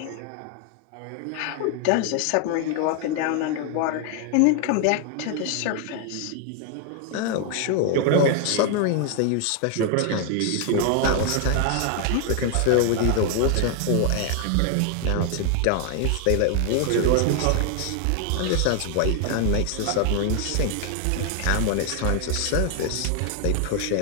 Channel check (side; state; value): both; different; correlation 0.00